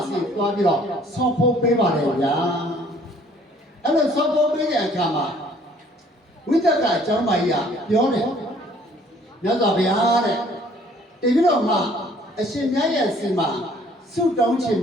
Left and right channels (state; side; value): normal; both; correlation 0.58